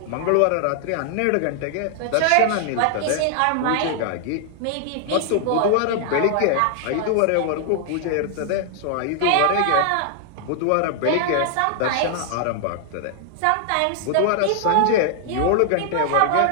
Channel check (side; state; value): both; different; correlation 0.00